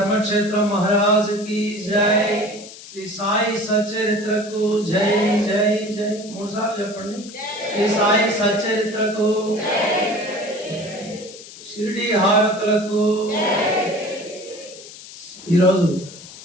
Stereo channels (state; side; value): noise; left; hiss, 16 dB below the sound